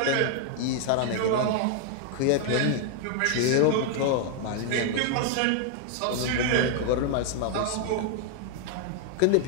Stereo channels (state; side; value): different; both; correlation 0.00